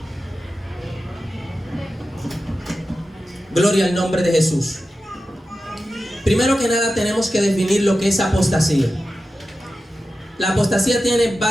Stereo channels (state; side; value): normal; both; correlation 0.92